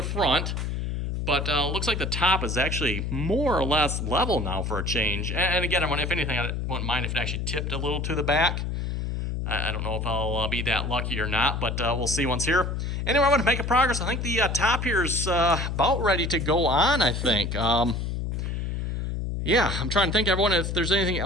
front, but looks like the top is actually more or less level now for a change. And again, if anything, I wouldn't mind if it actually tipped a little to the back. I don't know if I'll be that lucky or not, but we'll see once here. Anyway, I want to make a progress. I think the top here is about ready to go on, I think. Yeah, I'm trying to think, everyone, if there's anything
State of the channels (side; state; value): left; noise; hum, 2 dB below the sound